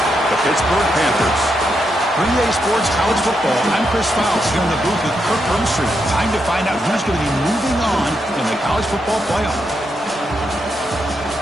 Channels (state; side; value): normal; both; correlation 0.82